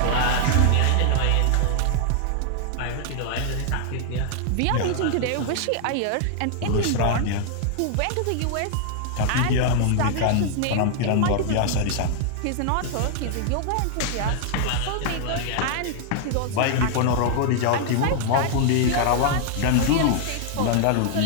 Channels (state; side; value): different; both; correlation 0.00